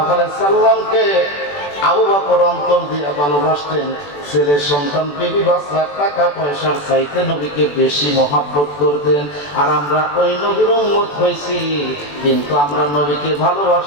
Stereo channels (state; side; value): late; right; 21 ms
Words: আলাইহি সাল্লামকে আবু বকর অন্তর দিয়ে ভালোবাসতেন। ছেলে সন্তান, বিবি বাচ্চা, টাকা পয়সার চাইতে নবীকে বেশি মহব্বত করতেন। আর আমরা ওই নবীর উম্মত হইছি, কিন্তু আমরা নবীকে